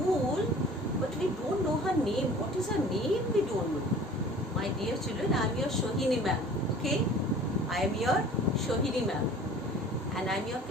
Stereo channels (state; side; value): normal; both; correlation 0.46